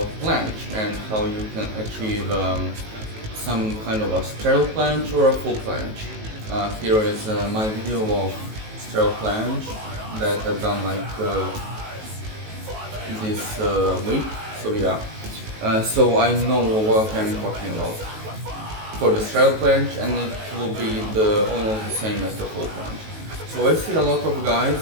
planche and how you can achieve some kind of a sterile planche or a full planche. Here is my video of sterile planche that I've done this week, so yeah. So I know what I'm talking about for the sterile planche, and it will be almost the same as the full planche. So I see a lot of guys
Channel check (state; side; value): late; left; 19 ms